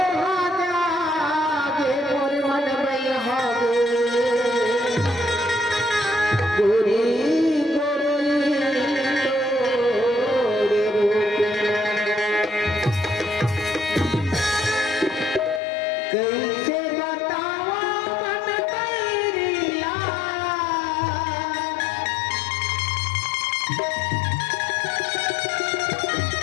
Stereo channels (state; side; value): drops out; right; at 15.6 s